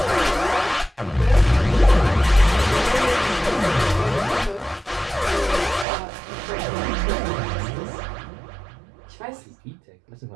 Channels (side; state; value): left; drops out; at 5.9 s